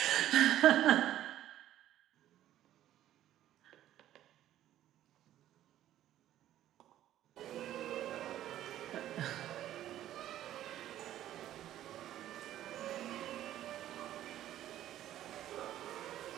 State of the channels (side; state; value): left; quieter; 12.6 dB